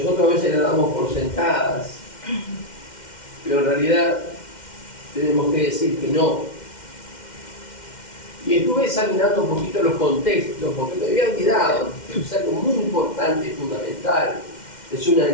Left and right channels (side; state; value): right; late; 2.1 ms